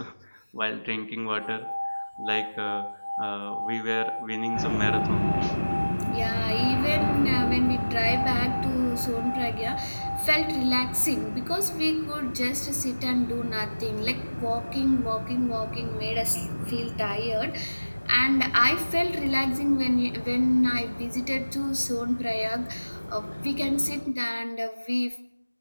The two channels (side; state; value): both; inverted; correlation -1.00